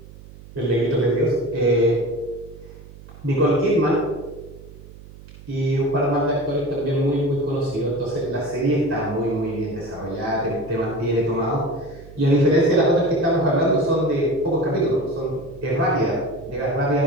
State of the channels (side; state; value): right; noise; hum, 19 dB below the sound